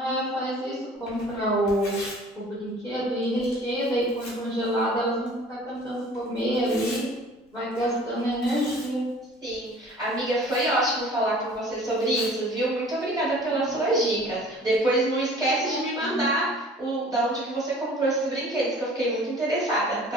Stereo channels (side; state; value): both; normal; correlation 0.48